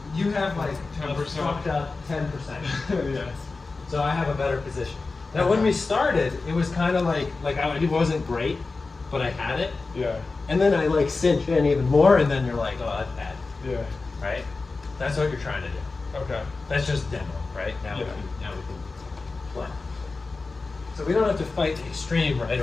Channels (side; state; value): right; quieter; 3.8 dB